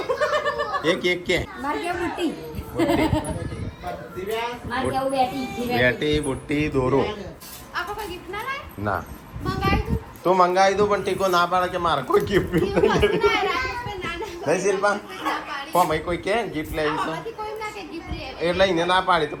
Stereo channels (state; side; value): identical; both; correlation 1.00